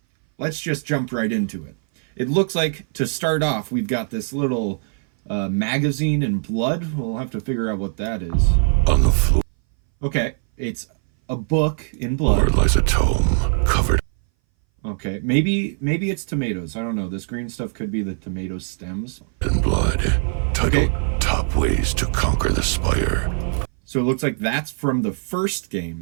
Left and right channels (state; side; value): silent; left; 61 dB below the other